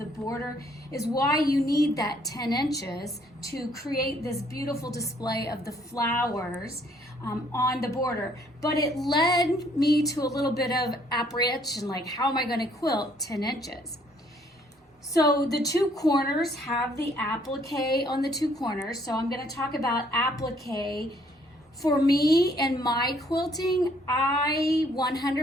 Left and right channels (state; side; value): normal; both; correlation 0.64